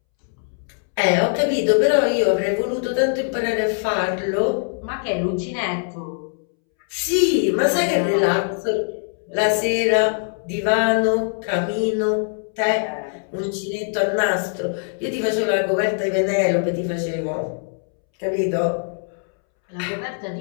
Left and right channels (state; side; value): silent; right; 64 dB below the other